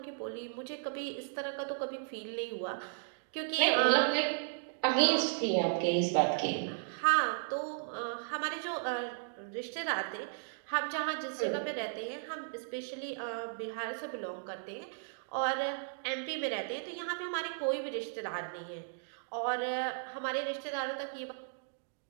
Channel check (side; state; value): left; silent; digital silence